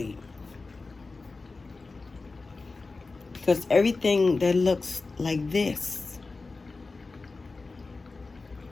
Because everything that looks like this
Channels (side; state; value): right; quieter; 3.8 dB